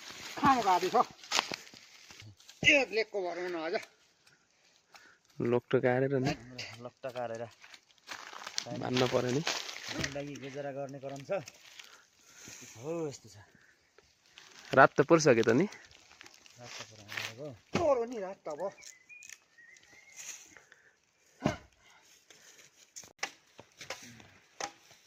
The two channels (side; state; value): both; identical; correlation 1.00